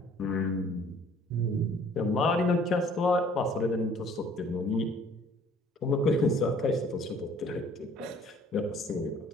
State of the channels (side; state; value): both; normal; correlation 0.56